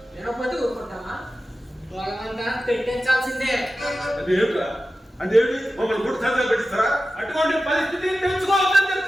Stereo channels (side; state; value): both; normal; correlation 0.94